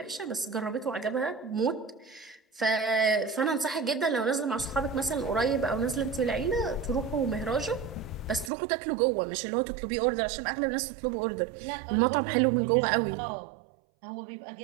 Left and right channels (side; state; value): left; drops out; at 8.5 s